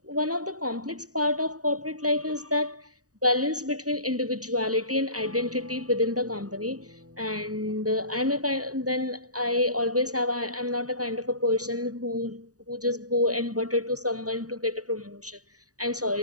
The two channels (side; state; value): left; late; 0.67 ms